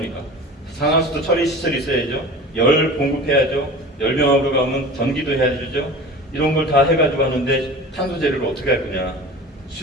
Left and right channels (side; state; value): both; normal; correlation 0.37